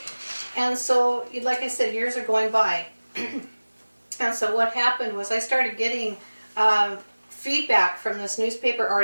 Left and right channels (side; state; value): both; inverted; correlation -1.00